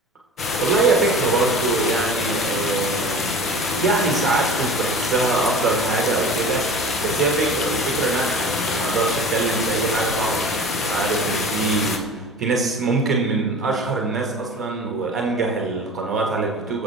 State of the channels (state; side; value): normal; both; correlation 0.39